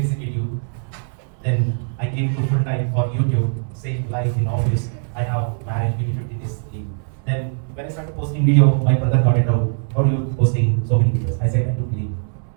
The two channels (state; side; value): silent; left; 65 dB below the other